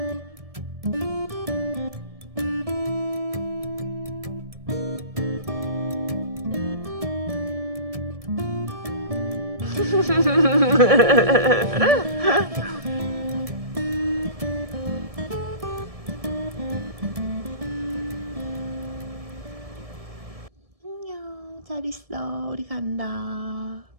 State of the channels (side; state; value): left; late; 1.7 ms